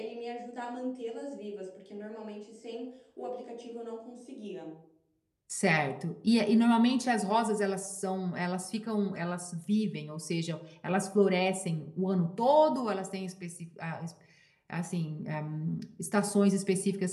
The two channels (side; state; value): both; identical; correlation 1.00